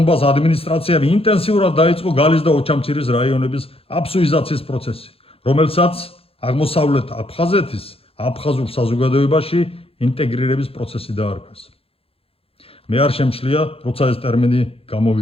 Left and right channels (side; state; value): right; late; 0.27 ms